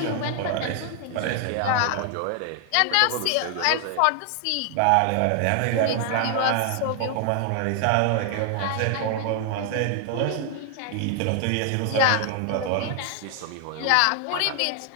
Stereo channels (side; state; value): both; different; correlation 0.00